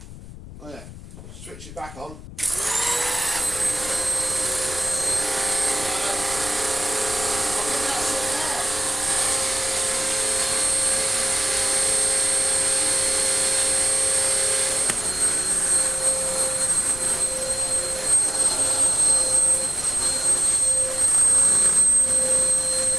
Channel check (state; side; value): noise; left; rumble, 15 dB below the sound